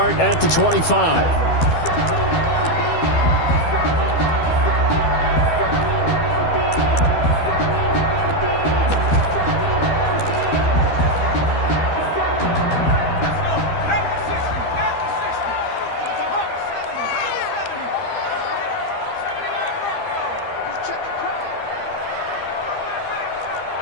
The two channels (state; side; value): late; right; 12 ms